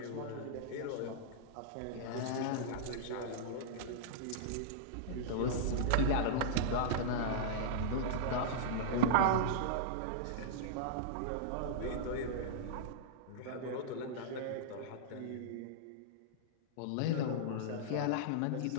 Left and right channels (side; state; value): both; different; correlation -0.03